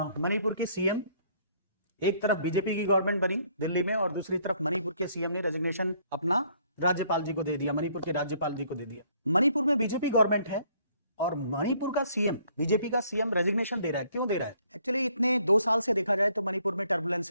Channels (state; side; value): inverted; both; correlation -0.64